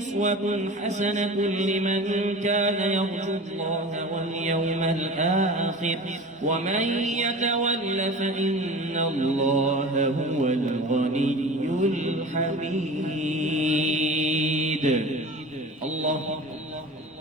حسنة لمن كان يرجو الله واليوم الآخر ومن يتول فإن الله هو الغني الحميد الله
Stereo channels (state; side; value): normal; both; correlation 0.36